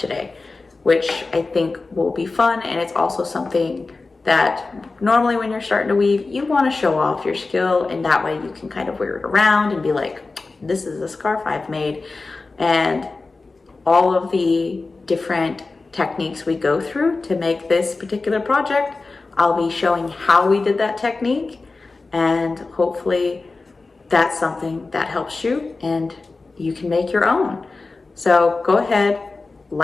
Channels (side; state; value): right; quieter; 3.7 dB